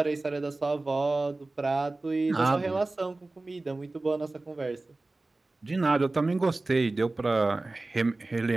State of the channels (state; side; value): quieter; left; 3.1 dB